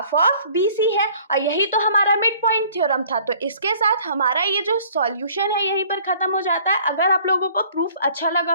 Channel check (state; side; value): inverted; both; correlation -0.54